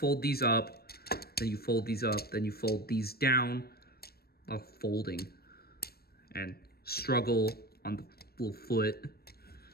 these up, then you fold these up, then you fold these down. Folding. And struggle on the little foot.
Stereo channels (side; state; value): right; late; 0.45 ms